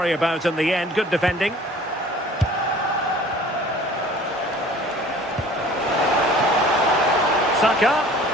about in the end. Good defending. Saka.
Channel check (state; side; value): normal; both; correlation 0.48